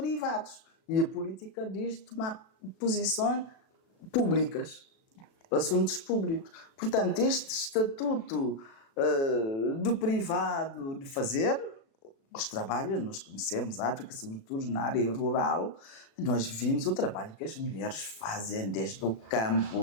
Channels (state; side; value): late; right; 36 ms